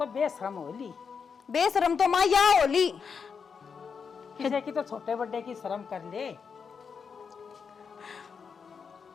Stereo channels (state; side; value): quieter; right; 6.0 dB